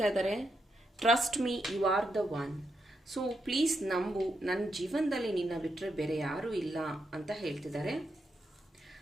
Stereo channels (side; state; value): both; normal; correlation 0.83